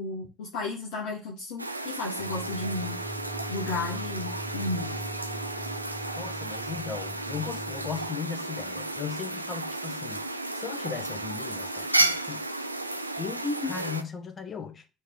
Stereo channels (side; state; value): both; inverted; correlation -0.36